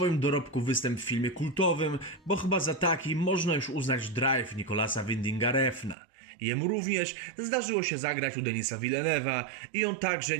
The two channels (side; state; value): left; drops out; at 6.0 s